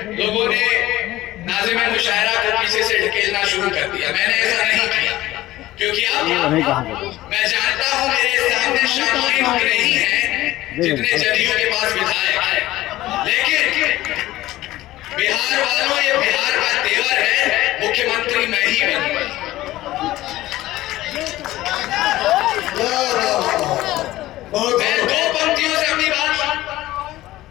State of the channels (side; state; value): right; quieter; 16.3 dB